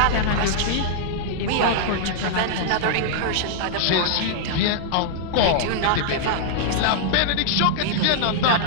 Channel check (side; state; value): both; different; correlation -0.01